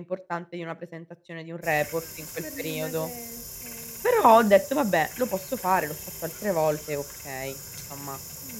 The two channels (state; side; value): identical; both; correlation 1.00